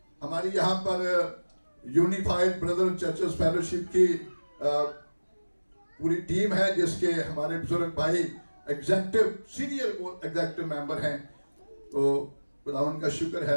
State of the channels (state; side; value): inverted; both; correlation -1.00